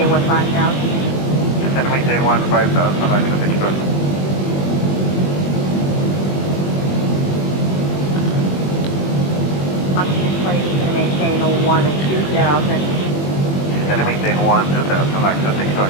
Descend maintain 15,000, access 630. Box 620 to maintain 1 and 2,000. Descend maintain 12,000, access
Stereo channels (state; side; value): late; right; 21 ms